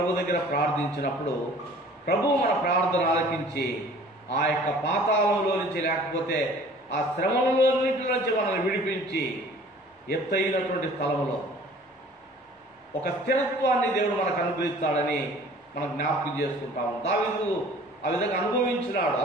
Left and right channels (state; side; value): normal; both; correlation 0.50